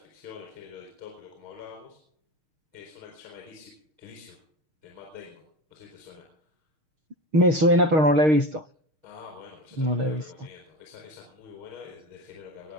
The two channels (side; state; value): left; late; 6.5 ms